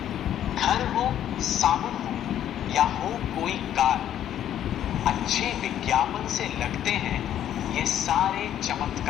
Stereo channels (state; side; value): quieter; right; 10.9 dB